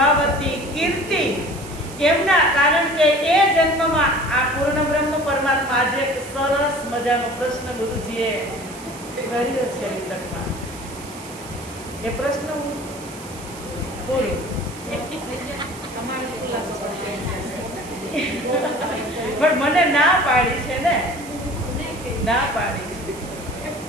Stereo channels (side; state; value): right; noise; hiss, 17 dB below the sound